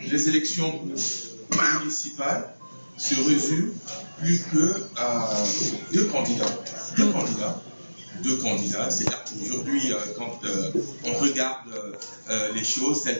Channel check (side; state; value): both; inverted; correlation -1.00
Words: les élections municipales se résument plus que à deux candidats. C'est-à-dire qu'aujourd'hui, quand on regarde les choses